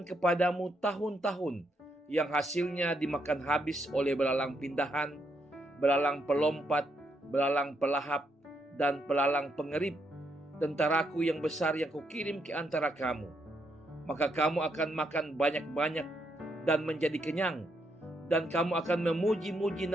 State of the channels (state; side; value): normal; both; correlation 0.77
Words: kepadamu tahun-tahun yang hasilnya dimakan habis oleh belalang pindahan, belalang pelompat, belalang pelahap, dan belalang pengerip, tentaraku yang besar yang kukirim ke antara kamu. Maka kamu akan makan banyak-banyak dan menjadi kenyang, dan kamu akan memuji-muji